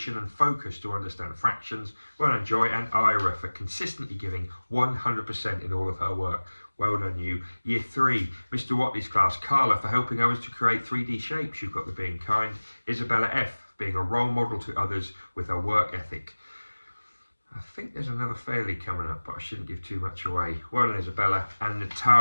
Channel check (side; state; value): both; inverted; correlation -1.00